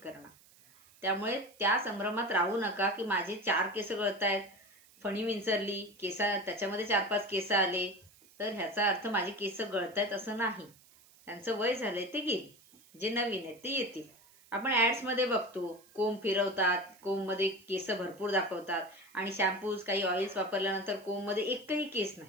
करणार. त्यामुळे त्या संभ्रमात राहू नका की माझे 4 केस गळतायत, फणी विंचरली, त्याच्यामध्ये 4-5 केस आले तर ह्याचा अर्थ माझे केस गळतायत असं नाही. त्यांचं वय झालंय ते गेली, जे नवीन आहेत ते येतील. आपण ऍड्समध्ये बघतो, कोंब फिरवतात, कोंबमध्ये केस भरपूर दाखवतात आणि शॅम्पूज काही ऑइल्स वापरल्यानंतर कोंबमध्ये एकही केस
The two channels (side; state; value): right; noise; hiss, 26 dB below the sound